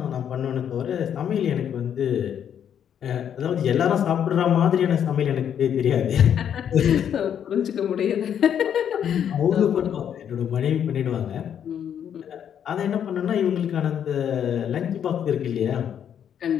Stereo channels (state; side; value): quieter; right; 9.0 dB